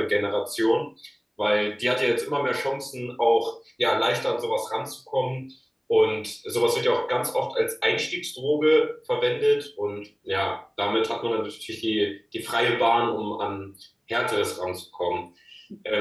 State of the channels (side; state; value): both; identical; correlation 1.00